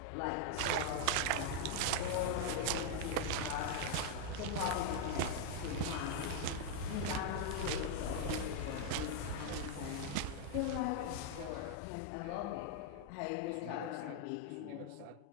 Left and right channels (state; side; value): different; both; correlation 0.00